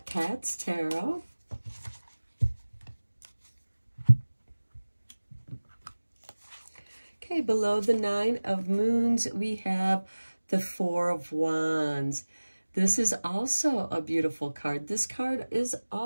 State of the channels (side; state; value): both; inverted; correlation -1.00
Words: Cats Tarot. Okay, below the Nine of Moons, we have the Four of Wands. This is also a beautiful card. This card is